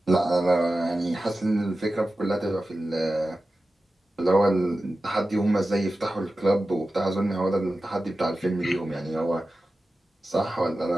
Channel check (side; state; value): both; normal; correlation 0.94